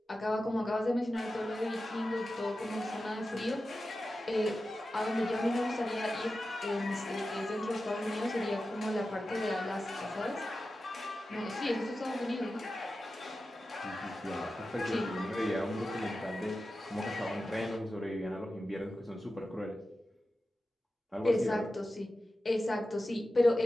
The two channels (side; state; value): both; normal; correlation 0.93